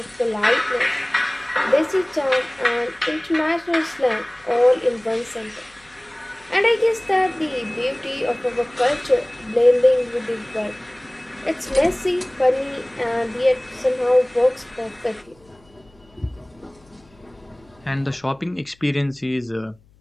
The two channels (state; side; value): noise; left; hum, 30 dB below the sound